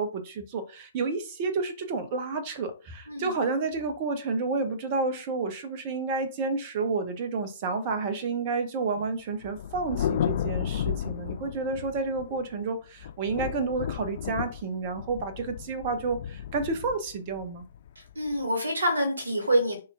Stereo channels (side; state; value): both; inverted; correlation -0.46